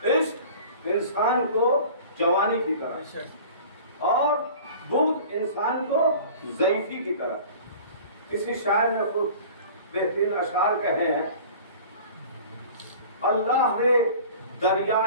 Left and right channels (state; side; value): inverted; both; correlation -0.42